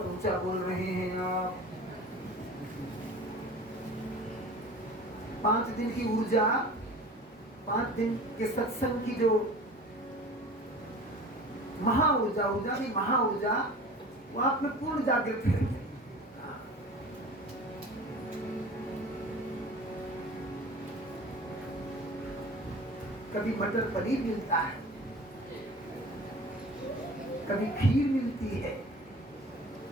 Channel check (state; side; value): normal; both; correlation 0.40